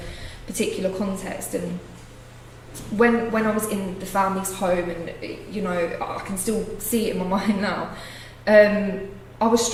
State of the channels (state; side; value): identical; both; correlation 1.00